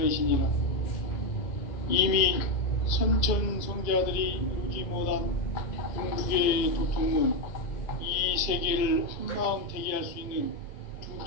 이미 선천성자들이 이루지 못한 궁극의 도통문, 이 세계를 한마음 되게 할 수 있는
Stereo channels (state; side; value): late; right; 2.0 ms